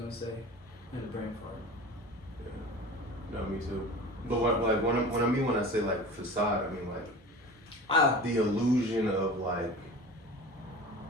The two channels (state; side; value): normal; both; correlation 0.36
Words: say. In the brain fart. Yeah. No, me too. But when I say like facade, I mean like the illusion of